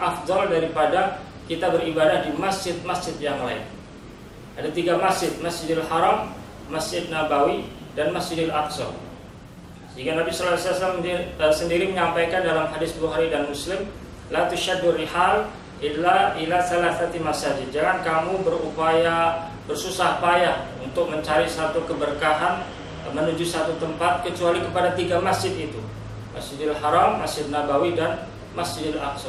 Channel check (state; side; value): identical; both; correlation 1.00